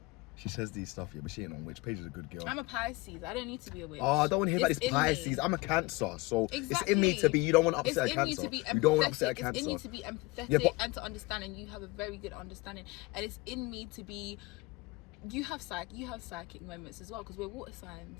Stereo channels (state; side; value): quieter; right; 22.7 dB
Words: She says these stuff, yeah, but she ain't no witch. Paige is a good girl. I'm a Pisces. I don't need to be a witch. Oh, I don't want to hear about It's this in me. Pisces. I'm a Cancer, so Exactly. it's in me to be. You don't want to upset It's a in you Cancer. to be empathetic. You don't want to upset a Cancer. It's in you to be empathetic Yeah, but- and to understand, and you have a very good understanding. And it's in me to be. You have psychic moments as well because we're water